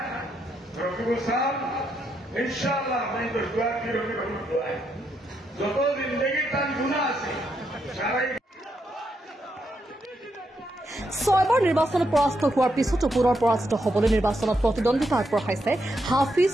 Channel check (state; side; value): normal; both; correlation 0.80